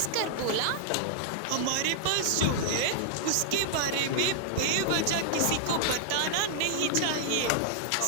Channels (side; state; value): both; different; correlation -0.01